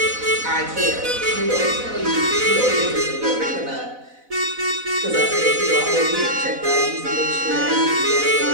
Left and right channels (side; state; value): left; late; 4.0 ms